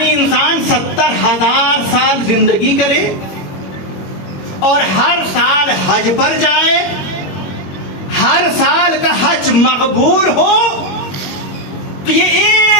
انسان 70,000 سال زندگی کرے اور ہر سال حج پر جائے، ہر سال کا حج مقبول ہو، تو یہ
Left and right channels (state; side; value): late; right; 21 ms